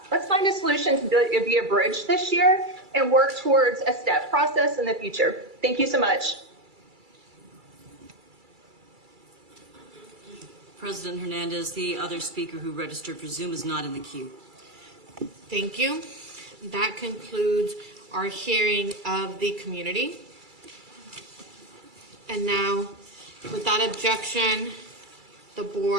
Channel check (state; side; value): late; left; 2.3 ms